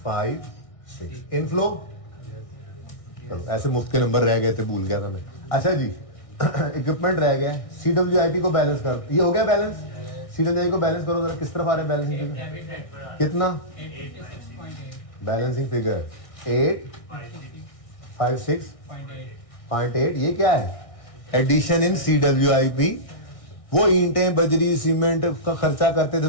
इनफ्लो। चलो ऐसे मुफ्त के नंबर रह गए थे, भूल गया था मैं। अच्छा जी, इक्विपमेंट रह गया, CWIP को बैलेंस कर, ये हो गया बैलेंस। CWIP को बैलेंस करो जरा, किस तरफ आ रहा है बैलेंसिंग फिगर, कितना बैलेंसिंग फिगर 856.8। ये क्या है, एडिशन इन CWIP। वो ईंटें बजरी सीमेंट का खर्चा करते थे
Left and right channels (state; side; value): late; right; 1.6 ms